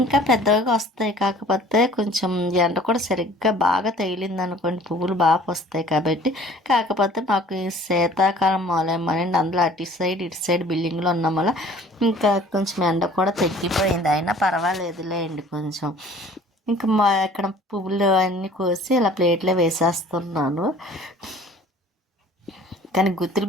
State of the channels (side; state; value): both; normal; correlation 0.50